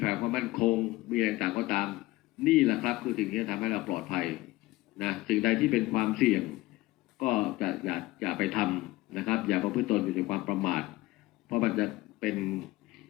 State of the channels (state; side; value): quieter; right; 19.0 dB